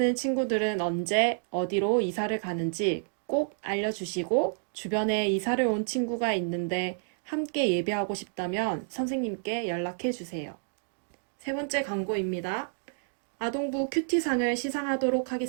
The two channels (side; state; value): left; silent; digital silence